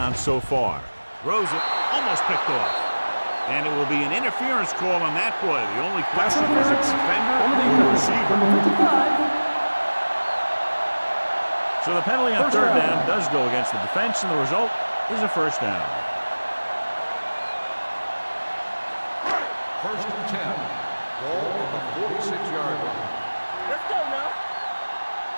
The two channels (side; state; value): both; inverted; correlation -1.00